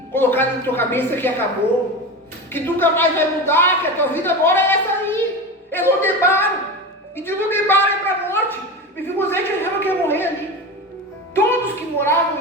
colocar na tua cabeça que acabou, que nunca mais vai mudar, que a tua vida agora é essa aí. É Lodebar. E de Lodebar é para a morte. Mefibosete achava que ia morrer ali. Todos que moravam em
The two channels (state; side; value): normal; both; correlation 0.25